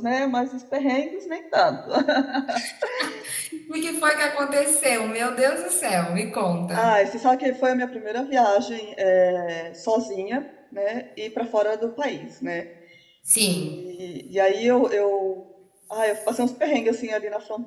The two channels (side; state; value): both; identical; correlation 1.00